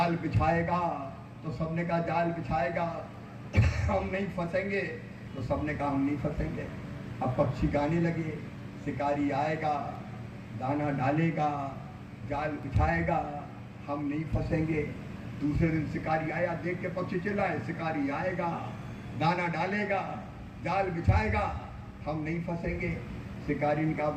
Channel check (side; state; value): both; identical; correlation 1.00